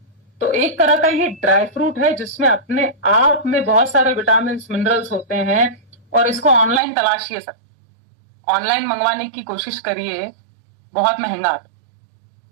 तो एक तरह का ये ड्राई फ्रूट है जिसमें अपने आप में बहुत सारे विटामिन मिनरल्स होते हैं, और इसको ऑनलाइन तलाशिए सर, ऑनलाइन मंगवाने की कोशिश करिए, बहुत महंगा आता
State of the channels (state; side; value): drops out; left; at 6.8 s